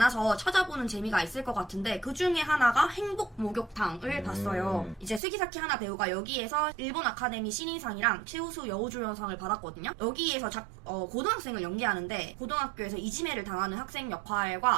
찾아보는 재미가 있을 것 같은데 그 중에 하나가 행복 목욕탕을 봤어요. 이제 스기사키 하나 배우가 여기에서 일본 아카데미 신인상이랑 최우수 여우조연상을 받았거든요. 여기에서 고등학생을 연기하는데 고등학교에서 이지매를 당하는 학생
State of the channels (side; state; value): left; drops out; at 5.2 s